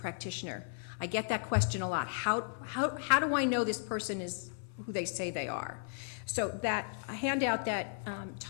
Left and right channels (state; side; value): silent; right; 55 dB below the other